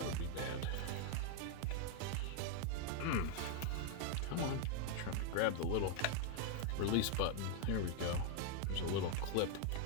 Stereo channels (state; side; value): different; both; correlation 0.00